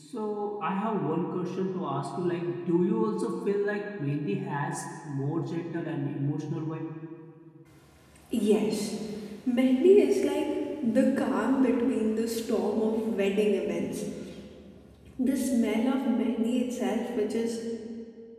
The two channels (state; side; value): identical; both; correlation 1.00